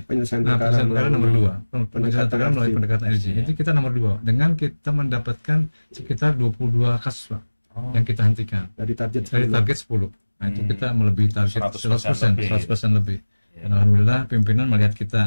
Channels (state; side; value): inverted; both; correlation -1.00